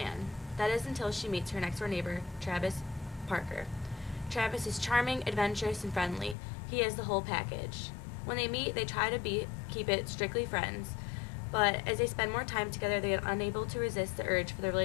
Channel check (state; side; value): drops out; right; at 6.4 s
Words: That is until she meets her next-door neighbor, Travis Parker. Travis is charming, adventurous, and friendly. He has the whole package. When they meet, they try to keep it strictly friends, but as they spend more time together, they are unable to resist the urge for the